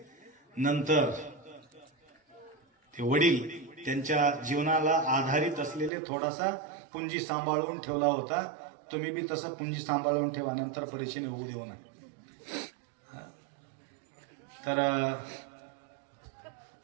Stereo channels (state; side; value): drops out; left; at 5.9 s